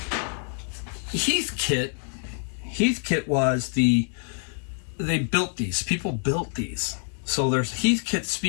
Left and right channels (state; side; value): silent; right; 56 dB below the other